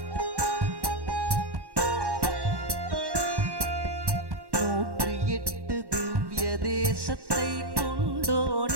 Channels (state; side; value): late; left; 1.1 ms